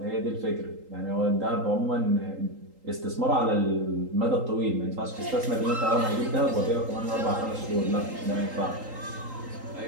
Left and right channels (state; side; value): late; left; 3.8 ms